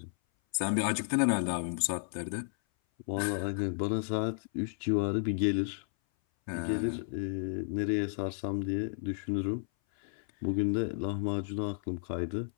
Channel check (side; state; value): right; silent; 56 dB below the other